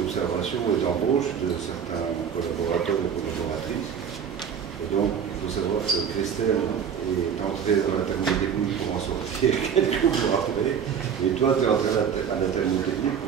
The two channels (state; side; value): quieter; left; 7.6 dB